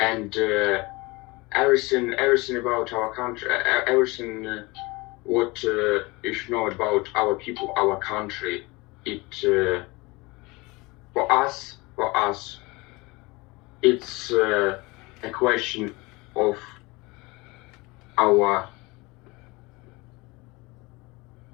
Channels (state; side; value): quieter; right; 24.1 dB